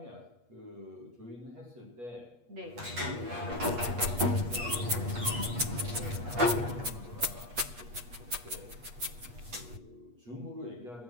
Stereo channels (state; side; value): late; left; 8.4 ms